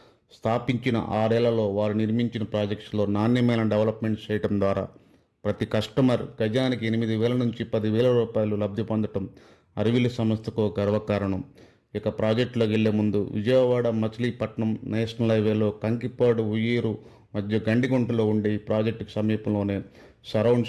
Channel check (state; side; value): identical; both; correlation 1.00